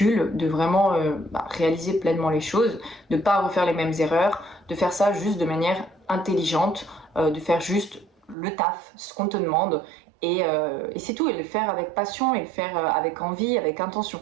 de vraiment réaliser pleinement les choses, de pas refaire les mêmes erreurs, de faire ça juste de manière intelligente, de faire juste le taf, ce qu'on te demande, et c'est tout, et le faire avec passion, et le faire avec envie, avec intention.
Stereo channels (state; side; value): drops out; left; at 8.3 s